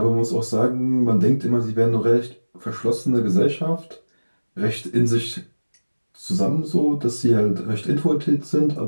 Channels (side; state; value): both; inverted; correlation -1.00